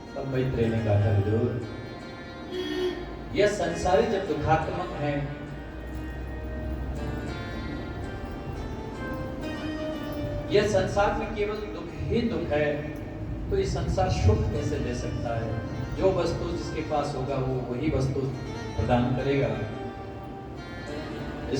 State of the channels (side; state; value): both; identical; correlation 1.00